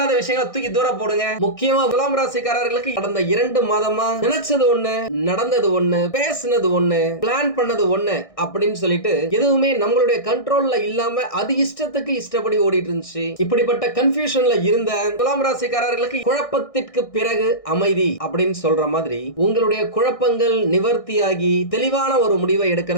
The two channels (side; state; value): right; late; 1.6 ms